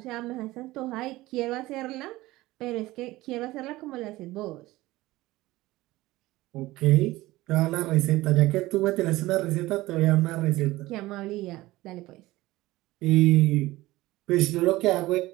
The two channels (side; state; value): left; quieter; 18.3 dB